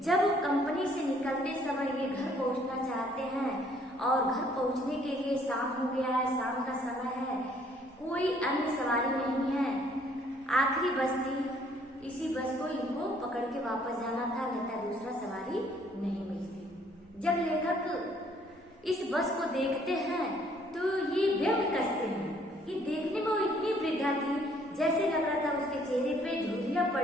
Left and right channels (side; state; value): both; normal; correlation 0.63